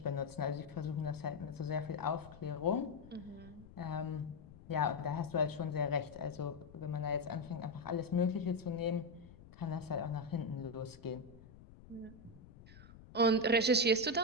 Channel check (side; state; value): left; noise; rumble, 19 dB below the sound